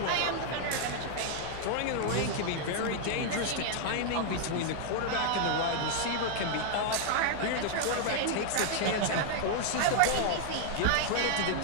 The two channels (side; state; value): both; different; correlation -0.01